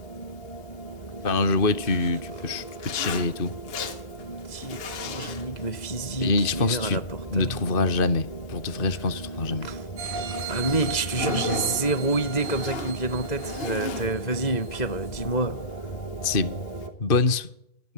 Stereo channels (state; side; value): late; right; 2.0 ms